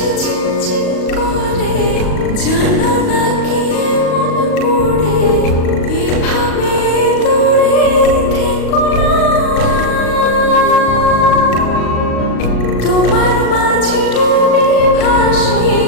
ঝিনঝিন করে জানো না কি মন পড়ে এভাবে দূরে থেকো না তোমার মাঝে ডুবে ভাসি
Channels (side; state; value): right; late; 38 ms